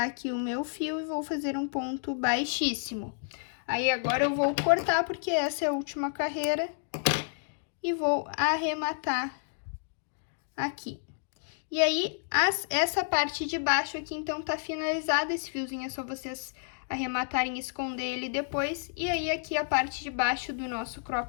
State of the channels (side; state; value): right; silent; digital silence